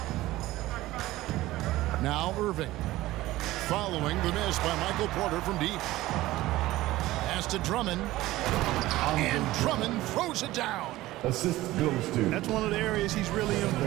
Now Irving. Following the miss by Michael Porter from deep. Pass to Drummond. And Drummond throws it down. Assist goes to. That's one of the areas he's really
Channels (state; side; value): quieter; left; 17.0 dB